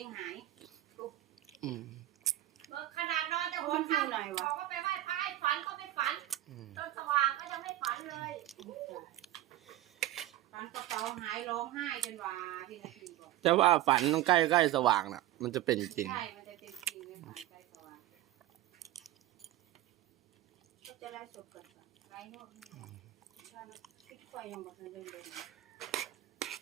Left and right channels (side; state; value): left; quieter; 15.0 dB